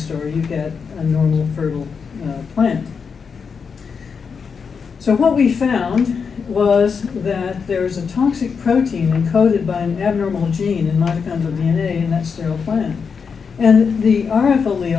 you get a normal fertile plant. So what we found was that there is a toxic protein encoded by an abnormal gene in mitochondrial DNA in that sterile plant. And the RF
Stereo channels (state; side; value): quieter; right; 5.9 dB